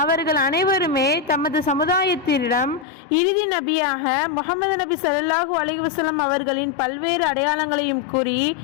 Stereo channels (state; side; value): drops out; right; at 2.9 s